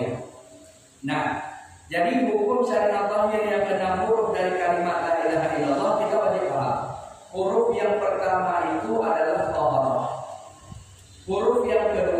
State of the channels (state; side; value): identical; both; correlation 1.00